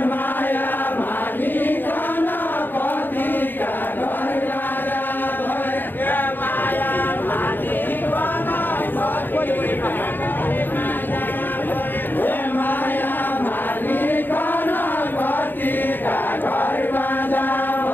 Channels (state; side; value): late; right; 0.092 ms